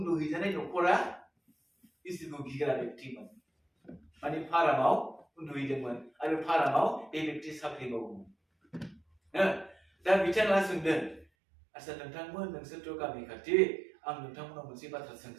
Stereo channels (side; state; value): left; drops out; at 11.2 s